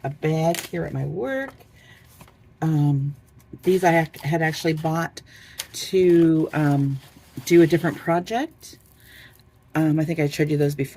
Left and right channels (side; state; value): both; identical; correlation 1.00